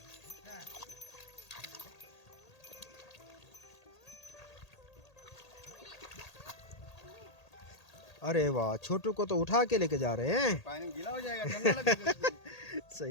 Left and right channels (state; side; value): late; right; 1.8 ms